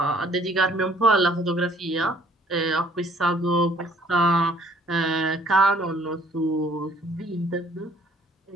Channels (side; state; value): both; normal; correlation 0.59